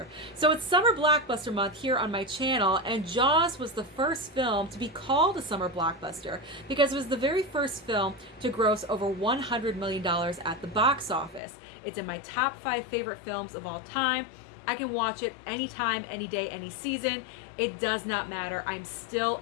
So it's summer blockbuster month here on my channel, and Jaws was the first film to be called a summer blockbuster because it was the very first film to gross over $100 million at the box office. It's in my top 5 favorite films of all time. I can watch it anytime, any day, any season. It does not matter. I'm still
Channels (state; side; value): drops out; right; at 11.4 s